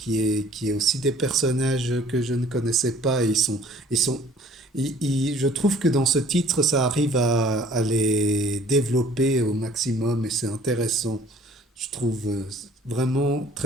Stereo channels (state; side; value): normal; both; correlation 0.54